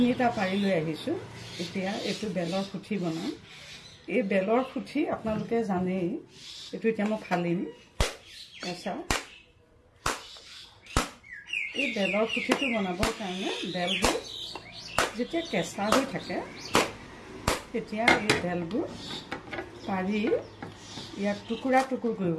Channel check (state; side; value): identical; both; correlation 1.00